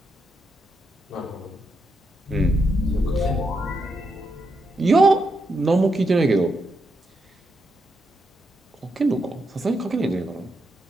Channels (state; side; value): normal; both; correlation 0.82